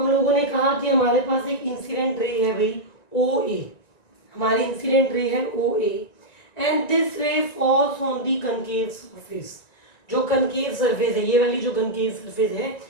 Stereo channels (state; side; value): late; right; 1.9 ms